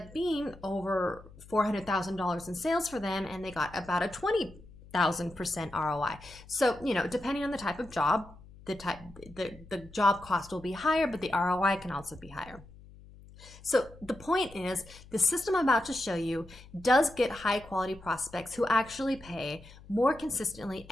being over $400,000 in sales for them, and they got about a 20,000% ROI. So, depending on the type of job, the job cost will be higher, but the ROI can also be higher. So the point is, the system I'm about to show you does get high quality prospects who actually pay more consistently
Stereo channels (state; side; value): noise; left; hum, 20 dB below the sound